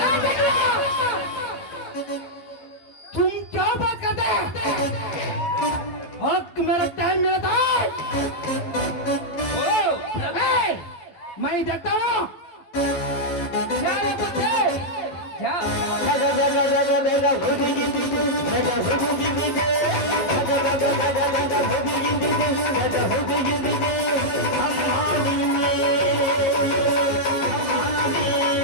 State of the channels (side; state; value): right; late; 11 ms